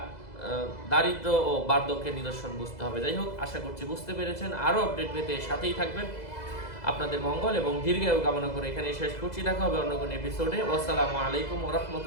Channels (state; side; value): late; right; 2.0 ms